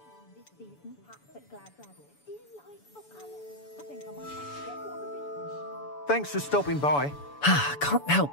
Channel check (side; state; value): right; late; 7.0 ms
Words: Thanks for stopping by. Can't